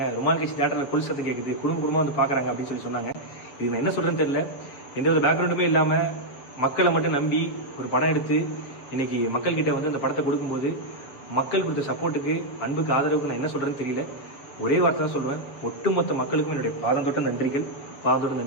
ரொம்ப நாள் கழிச்சு தேட்டரில் கொல் சத்தம் கேட்குது, குடும்பமாக வந்து பார்க்குறாங்க அப்படின்னு சொல்லி சொன்னாங்க. இது நான் என்ன சொல்கிறேன்னு தெரியல. எந்த ஒரு பேக்ரவுண்டுமே இல்லாமல் மக்களை மட்டும் நம்பி ஒரு படம் எடுத்து இன்னைக்கு மக்கள்கிட்ட வந்து அந்த படத்தை கொடுக்கும்போது மக்கள் கொடுத்த சப்போர்ட்டுக்கு, அன்புக்கு, ஆதரவுக்கு நான் என்ன சொல்கிறேன்னு தெரியல. ஒரே வார்த்தை தான் சொல்லுவேன், ஒட்டுமொத்த மக்களுக்கும் என்னுடைய பாதம் தொட்ட நன்றிகள்.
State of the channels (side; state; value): right; late; 7.3 ms